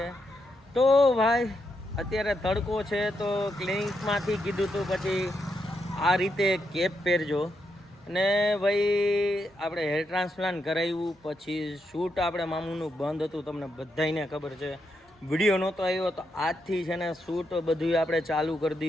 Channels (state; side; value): normal; both; correlation 0.82